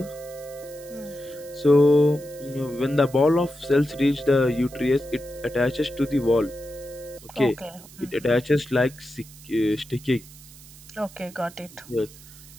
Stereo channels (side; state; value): right; noise; hiss, 20 dB below the sound